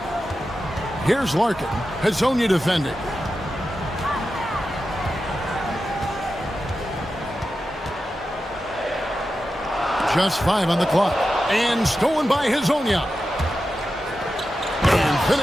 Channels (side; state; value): both; normal; correlation 0.91